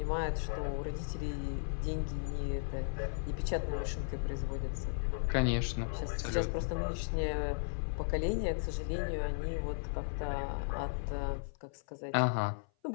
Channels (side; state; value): right; silent; 54 dB below the other